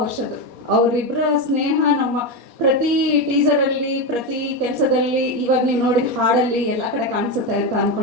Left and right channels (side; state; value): left; late; 4.2 ms